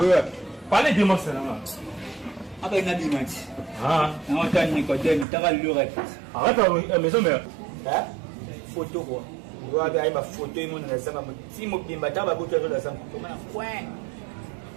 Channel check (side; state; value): left; drops out; at 5.2 s